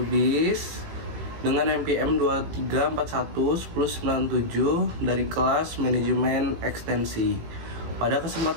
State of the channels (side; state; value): left; late; 18 ms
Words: dengan NPM 23411097 dari kelas Manajemen Ekstensi. Pada